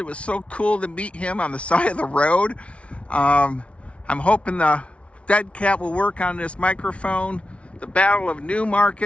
was so cool to meet him on the side of the road. I'm hoping the dead cat will work on this microphone. The Battle of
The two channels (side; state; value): right; late; 0.061 ms